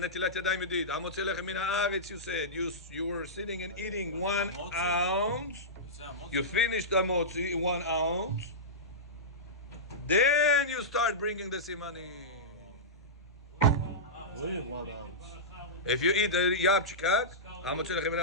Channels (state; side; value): normal; both; correlation -0.15